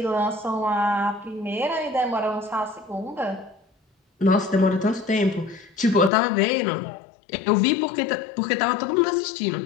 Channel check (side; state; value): right; drops out; at 6.1 s